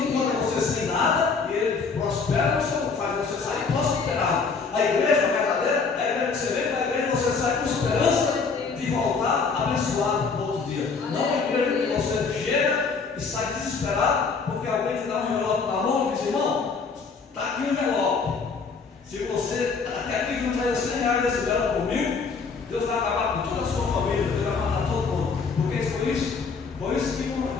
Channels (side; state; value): right; quieter; 5.0 dB